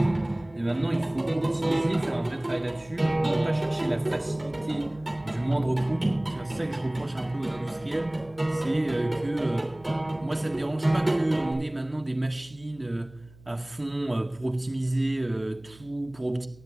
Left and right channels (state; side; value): noise; right; hum, 24 dB below the sound